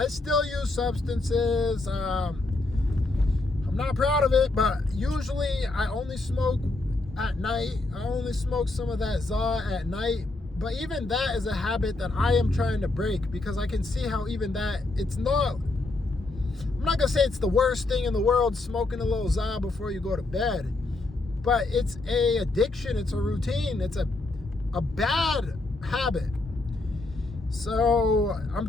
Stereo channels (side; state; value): right; quieter; 3.1 dB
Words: still use substances. I'm not proud of it, but usually I only smoke at night. I only smoke some of that ZA at night. But even that is a habit that I am trying to break, because I can see how even that, it's not, I'm not going to say it's the worst thing in the world, smoking a little ZA before you go to bed. But it's a addiction. It's a routine. It's a bad habit. So I'm